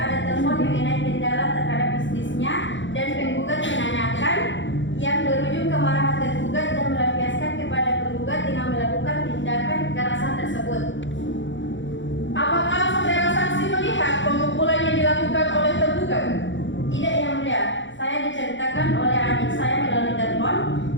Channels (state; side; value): late; right; 0.54 ms